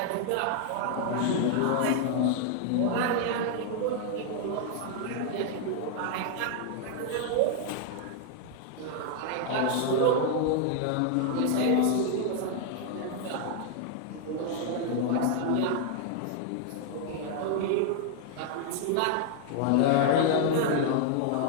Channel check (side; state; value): both; different; correlation 0.00